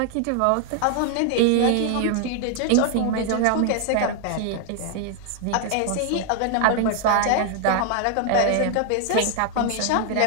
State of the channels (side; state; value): both; different; correlation 0.00